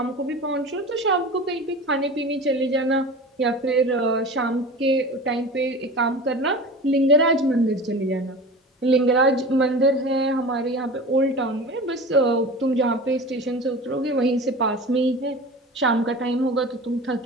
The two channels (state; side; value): normal; both; correlation 0.35